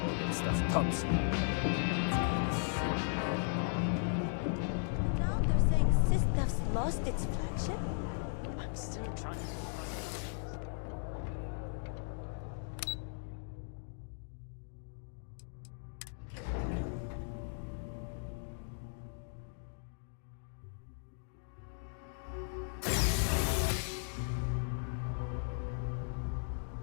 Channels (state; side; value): silent; right; digital silence